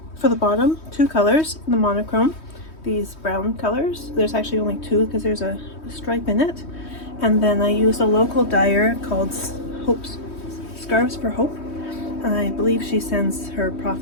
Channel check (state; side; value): late; right; 3.2 ms